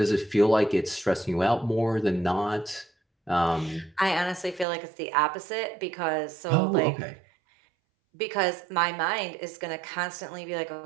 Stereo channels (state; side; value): drops out; left; at 4.7 s